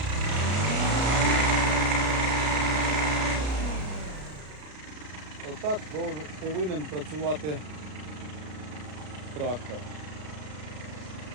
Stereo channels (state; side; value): late; left; 33 ms